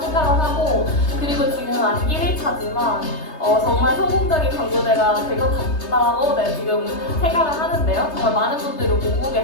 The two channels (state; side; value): late; right; 3.3 ms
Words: 하고, 그리고 지금 아직 1일차지만 정말 성공적인 광고대가 될 것 같다고 지금 생각을 하는데요. 정말 많은 분들이 오고